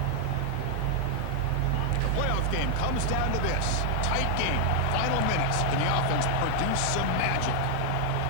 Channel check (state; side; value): different; both; correlation 0.00